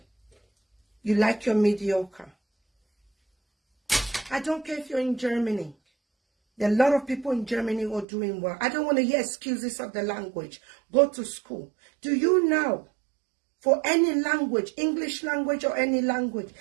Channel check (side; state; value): left; drops out; at 8.1 s